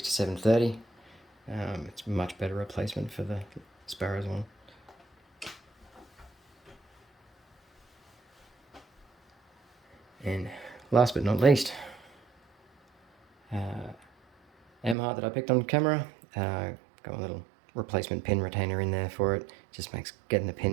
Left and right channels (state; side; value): drops out; left; at 15.0 s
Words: It's a much better replacement for the Sparrows one. And last but not least, M-Heart that I picked on camera. Got a little replacement pin retainer in there for it. Just makes getting the